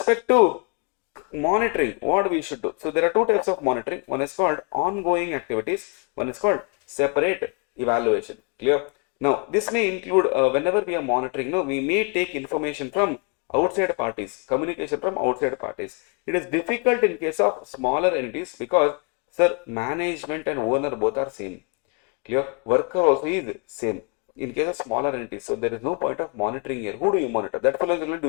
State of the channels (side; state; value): right; quieter; 36.4 dB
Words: to monitoring, what we should do. So there are two types of monitoring. One is called ongoing activities. One is called separate evaluation. Clear? Now, this may include whenever we are monitoring, we may take information from outside parties, communication from outside parties. It is difficult in case of smaller entities because, sir, management and owner both are same. Clear? Worker also is same. In case of smaller entities, so there is no point of monitoring here. Who do you monitor? That fellow is only